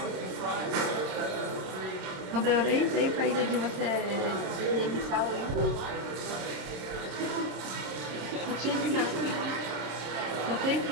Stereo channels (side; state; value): left; late; 26 ms